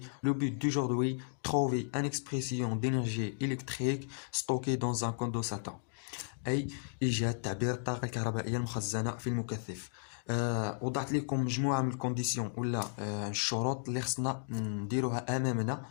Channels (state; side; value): silent; right; digital silence